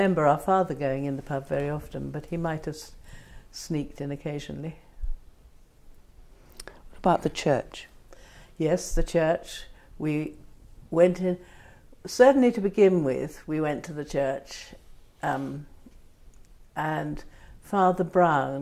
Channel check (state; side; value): identical; both; correlation 1.00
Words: our father going in the pub very often, but he might have sneaked in occasionally. What about the church? Yes, the church. We went in, certainly to begin with, we went to the church, and Father